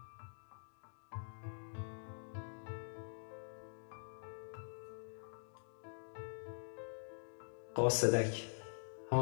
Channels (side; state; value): right; silent; digital silence